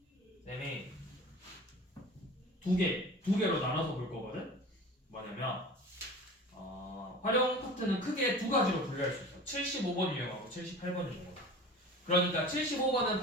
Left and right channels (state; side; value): normal; both; correlation 0.38